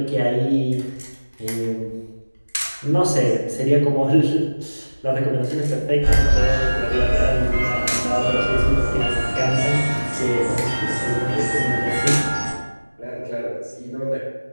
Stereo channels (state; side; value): inverted; both; correlation -1.00